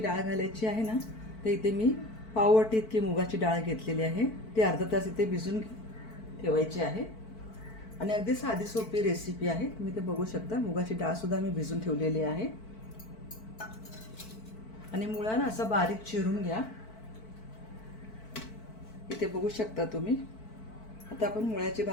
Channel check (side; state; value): right; late; 4.5 ms